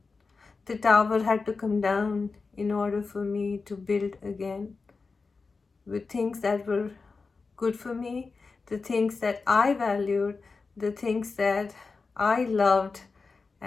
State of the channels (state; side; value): quieter; right; 4.4 dB